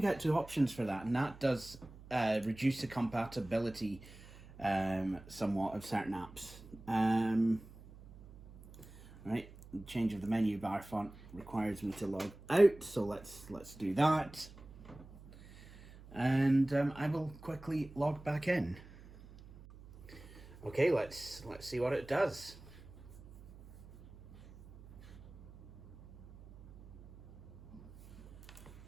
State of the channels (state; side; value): noise; right; hum, 19 dB below the sound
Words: get 2 options for that, and that does reduce the compatibility somewhat of certain apps. Right, change of the menu bar font requires me to log out, so let's do that. And I will quickly log back in. Okay, let's see what it does.